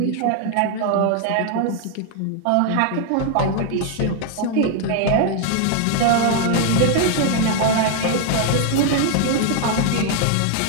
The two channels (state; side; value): different; both; correlation 0.00